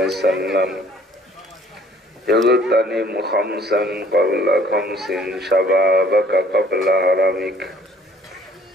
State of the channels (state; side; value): normal; both; correlation 0.57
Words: وسلم اغتنم خمسا قبل خمس شبابك قبل هرمك